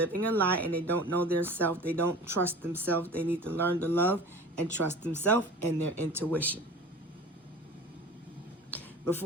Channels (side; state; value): both; normal; correlation 0.39